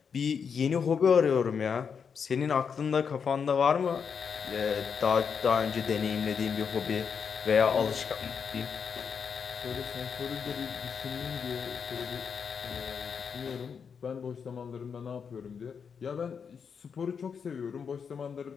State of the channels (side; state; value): right; quieter; 6.5 dB